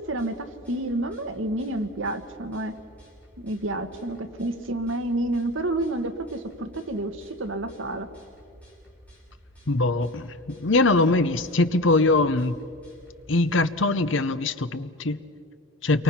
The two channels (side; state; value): both; normal; correlation 0.31